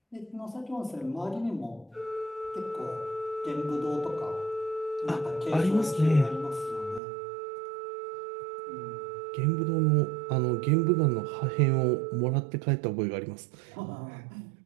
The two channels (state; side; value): drops out; left; at 7.0 s